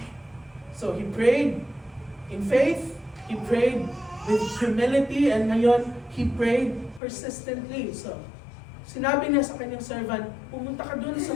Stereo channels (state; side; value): drops out; right; at 7.0 s